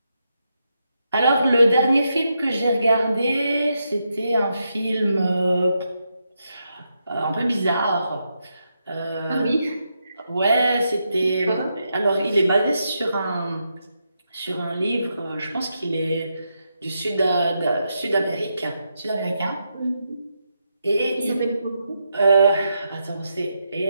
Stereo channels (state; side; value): inverted; both; correlation -0.83